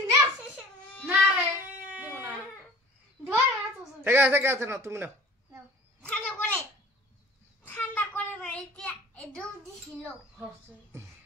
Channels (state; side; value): normal; both; correlation 0.46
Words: না রে দিব না ধর না তো থেকে আছে না তুমি নাও ঠান্ডা করে না এটা এদম দিছিল হচ্ছে